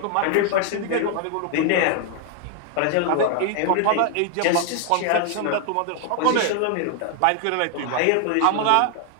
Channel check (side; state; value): both; different; correlation 0.00